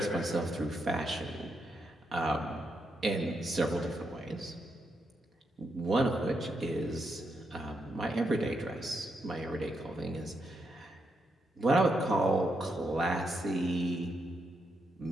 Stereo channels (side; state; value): both; normal; correlation 0.81